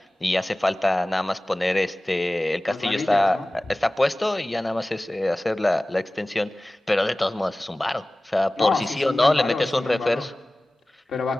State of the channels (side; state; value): both; normal; correlation 0.97